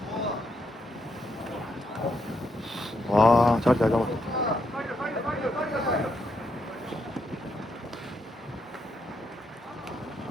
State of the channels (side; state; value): both; normal; correlation 0.78